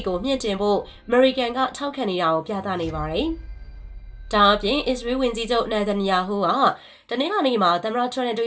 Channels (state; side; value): identical; both; correlation 1.00